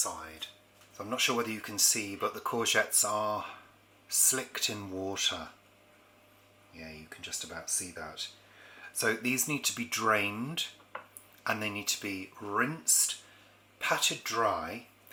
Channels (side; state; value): both; identical; correlation 1.00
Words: So I'm not sure whether you can see, but the courgettes are slicked in water. Yeah, you can just about see that. So these need to be drained and they need to be rinsed, patted dry,